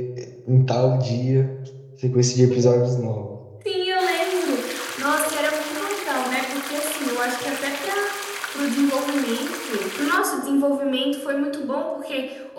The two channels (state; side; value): identical; both; correlation 1.00